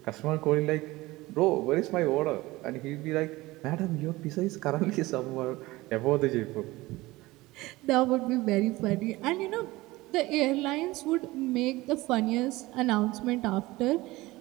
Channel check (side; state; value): left; quieter; 19.9 dB